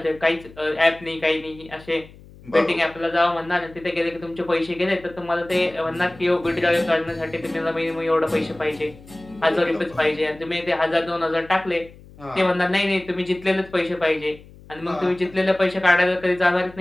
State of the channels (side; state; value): left; noise; hum, 22 dB below the sound